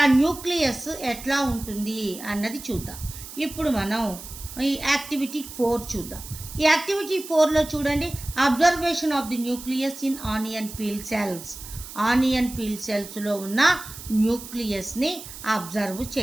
ఆ న్యూక్లియస్ ఎట్లా ఉంటుంది అన్నది చూద్దాం. ఇప్పుడు మనం ఈ యాక్టివిటీ 4 చూద్దాం. ఈ యాక్టివిటీ 4లో చూడండి, observation of the nucleus in onion peel సెల్స్లో ఉన్న న్యూక్లియస్ని అబ్జర్వ్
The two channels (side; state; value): right; noise; hiss, 13 dB below the sound